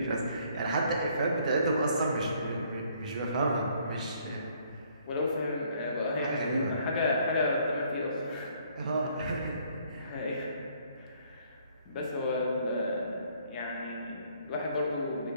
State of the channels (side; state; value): both; inverted; correlation -0.64